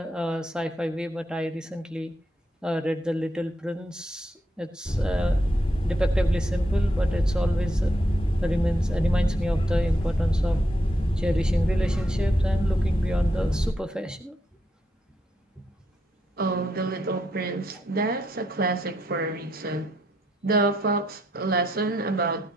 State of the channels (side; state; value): both; normal; correlation 0.79